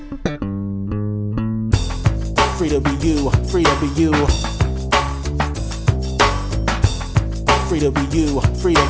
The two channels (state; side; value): identical; both; correlation 1.00